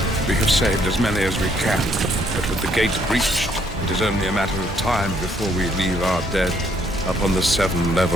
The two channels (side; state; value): both; normal; correlation 0.68